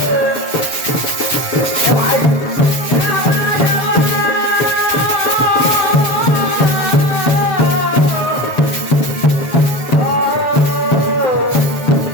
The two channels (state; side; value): late; right; 7.4 ms